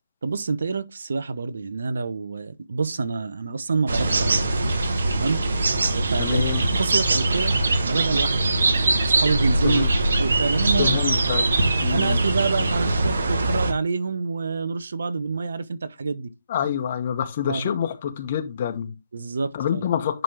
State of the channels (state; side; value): inverted; both; correlation -0.84